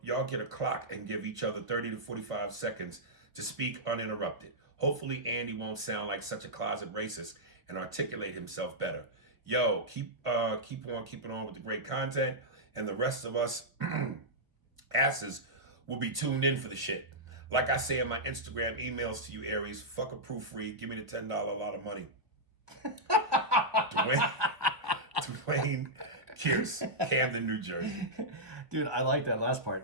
get a clock and give each other 30 to 45 seconds to speak uninterrupted. Hopefully Andy won't sound like such a closet racist and articulate himself better. Yo, keep on keeping on with the great content, and the rest of us asses will be tuned in for the shit. Like I say in my Instagram emails to you, Aries, fuck a proofread, give me the $10 a lot of money. Dwayne Pierce, Camden, New Jersey. Dude, I like that last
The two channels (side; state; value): left; late; 1.0 ms